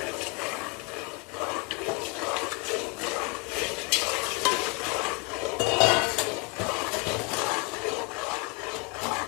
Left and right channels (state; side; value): quieter; right; 29.8 dB